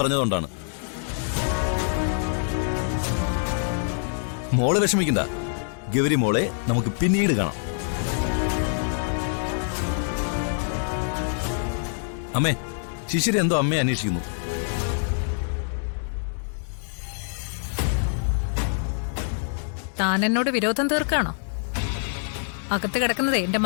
മോളെ വിഷമിക്കണ്ട, ഗൗരി മോളെ നമുക്ക് പിന്നീട് കാണാം. അമ്മേ, ശിശിര എന്തോ അമ്മയെ അന്വേഷിക്കുന്നു. താൻ എന്നോട് വിരോധം തീർക്കാണോ? അകത്ത് കിടക്കുന്നതേ എന്റെ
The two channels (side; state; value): right; silent; digital silence